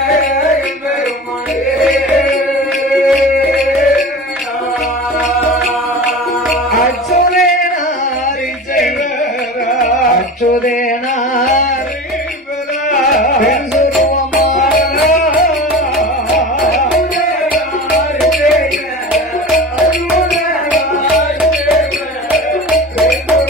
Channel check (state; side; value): normal; both; correlation 0.33